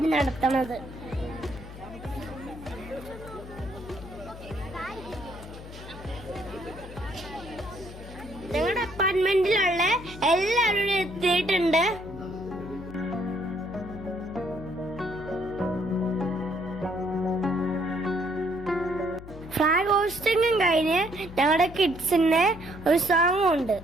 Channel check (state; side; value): noise; left; hum, 14 dB below the sound